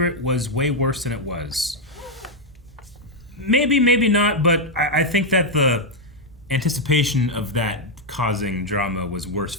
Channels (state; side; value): normal; both; correlation 0.00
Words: was way worse than it was. Maybe, maybe not, but I think that the anticipation of that causing drama was worse